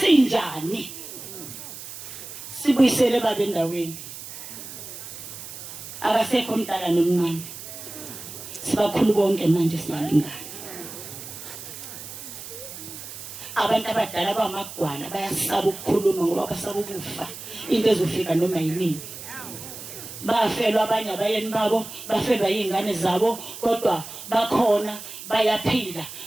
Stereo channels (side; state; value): right; noise; hiss, 12 dB below the sound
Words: Sibuyisele baba endaweni. Akasekho umdala nomncane. Sibakhulu bonke manje siyalingana. Abantu abadala bamagwala bayasaba ukukhuluma ngoba basaba ukufa. Into ezofika noma yini. Bafelwa abanye abayeni babo, bafelwa izingane zabo, kodwa bakhona bayaphila,